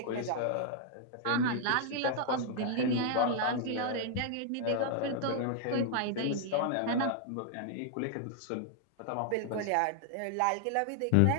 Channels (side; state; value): both; different; correlation 0.00